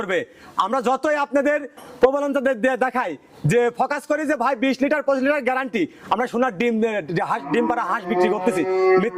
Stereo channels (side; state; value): both; identical; correlation 1.00